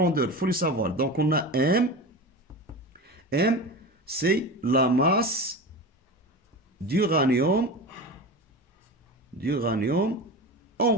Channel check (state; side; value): normal; both; correlation 0.28